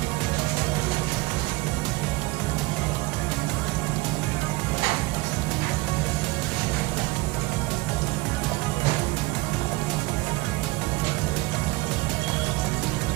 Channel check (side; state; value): left; quieter; 21.9 dB